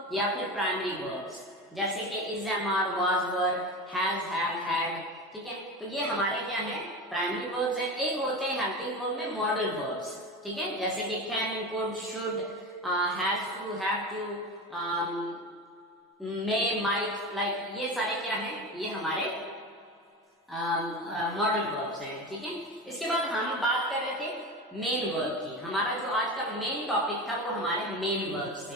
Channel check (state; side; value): normal; both; correlation 0.25